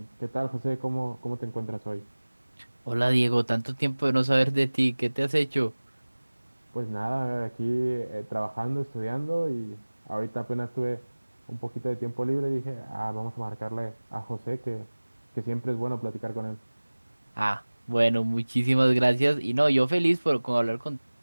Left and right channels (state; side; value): inverted; both; correlation -1.00